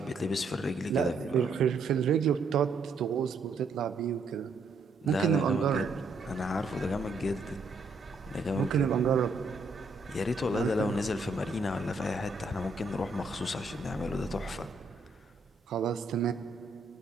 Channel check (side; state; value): left; quieter; 3.4 dB